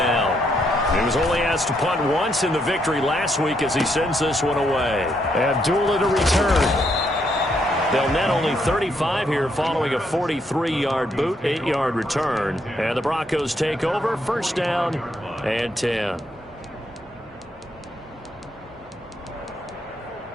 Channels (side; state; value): both; normal; correlation 0.75